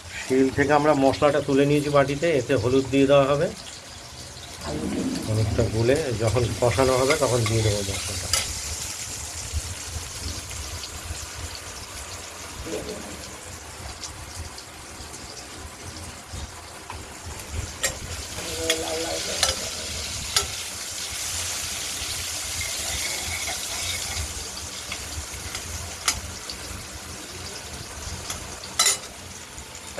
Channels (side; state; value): both; identical; correlation 1.00